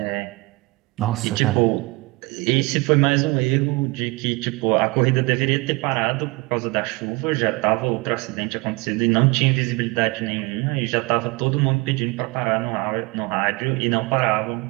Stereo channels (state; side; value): quieter; left; 24.4 dB